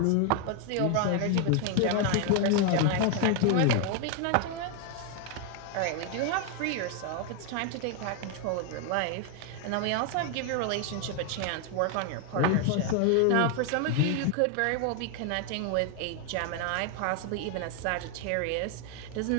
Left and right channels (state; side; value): different; both; correlation 0.00